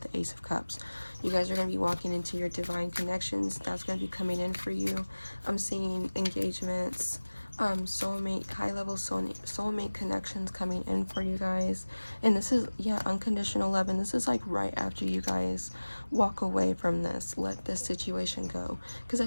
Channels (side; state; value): both; inverted; correlation -1.00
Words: the Ace of Cups. You guys are going to be walking into your divine connections. That's going to be coming in for you. I'm seeing engagements, soulmate, high-level soulmate connections coming in for you guys. And this is, yeah, unconditional love. And this is like right after you guys walk away from this. Let this situation go. Because I